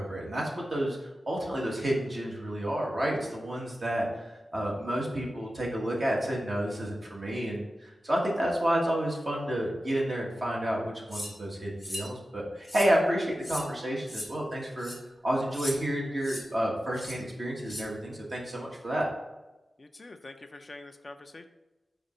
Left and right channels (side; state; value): both; normal; correlation 0.93